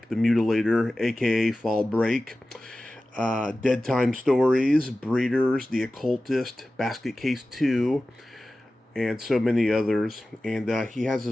The Mutilator, aka Fall Break, Deadtime Stories, Breeders, The Occultist, Basket Case 2, and so many others. And he has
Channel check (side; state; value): both; normal; correlation 0.95